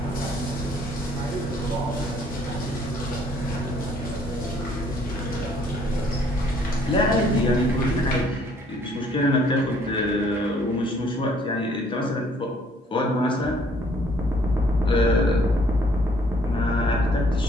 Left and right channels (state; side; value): normal; both; correlation 0.61